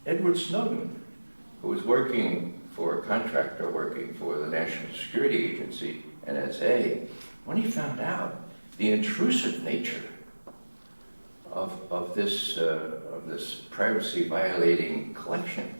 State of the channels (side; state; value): both; inverted; correlation -1.00